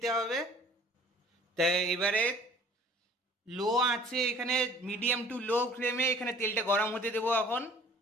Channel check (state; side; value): normal; both; correlation 0.50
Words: হবে। তাই এবারে লো আছে এখানে, মিডিয়াম টু লো ফ্লেমে এখানে তেলটা গরম হতে দেবো এখন।